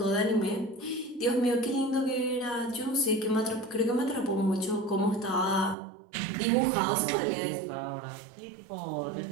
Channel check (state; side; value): drops out; left; at 5.8 s